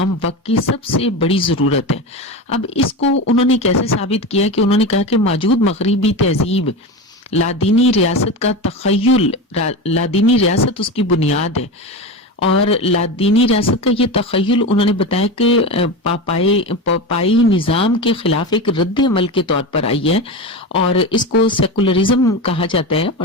وقت کی سب سے بڑی ضرورت ہے. اب اس کو انہوں نے کیسے ثابت کیا کہ انہوں نے کہا کہ موجود مغربی تہذیب لادینی ریاست کا تخیل, لادینی ریاست اس کی بنیاد ہے, اور لادینی ریاست کا یہ تخیل انہوں نے بتایا کہ پاپائی نظام کے خلاف ایک رد عمل کے طور پر آئی ہے, اور اس کو سیکولرزم کہا جاتا ہے.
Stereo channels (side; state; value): both; normal; correlation 0.22